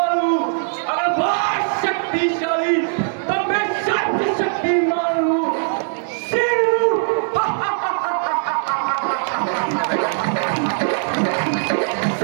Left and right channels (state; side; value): silent; left; digital silence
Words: हूँ, अगर बहुत शक्तिशाली तब मैं शक्ति शक्तिमान हूँ।